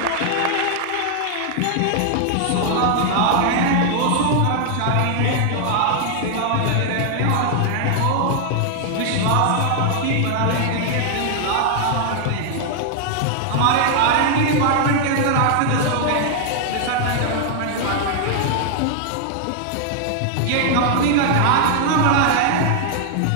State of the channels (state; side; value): different; both; correlation 0.00